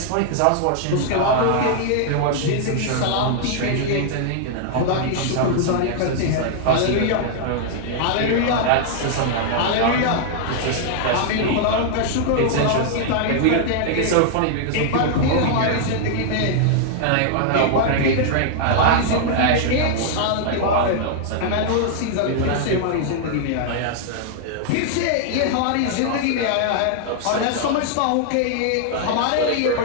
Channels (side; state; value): both; different; correlation -0.01